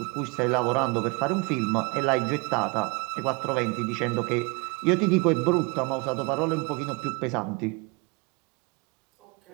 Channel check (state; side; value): quieter; left; 28.5 dB